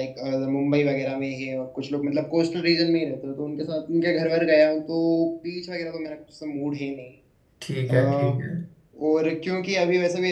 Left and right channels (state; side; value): identical; both; correlation 1.00